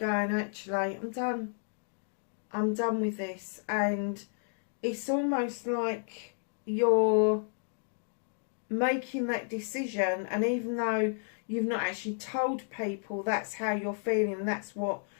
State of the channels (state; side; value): silent; right; 56 dB below the other